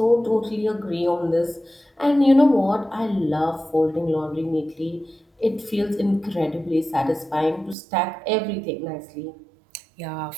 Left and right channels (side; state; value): left; drops out; at 7.8 s